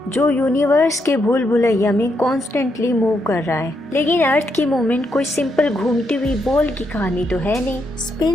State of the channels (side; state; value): both; normal; correlation 0.79